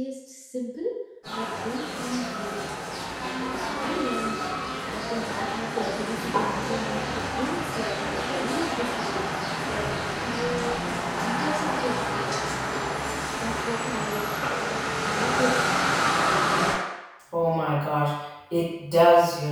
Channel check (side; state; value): both; identical; correlation 1.00